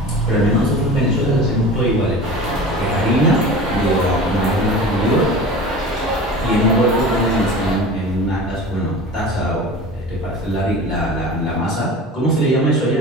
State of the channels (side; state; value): both; normal; correlation 0.36